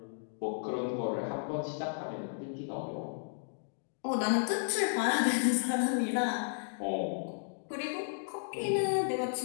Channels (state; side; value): silent; right; digital silence